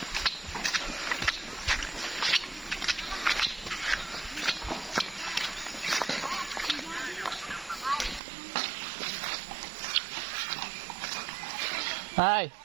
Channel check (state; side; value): drops out; left; at 8.2 s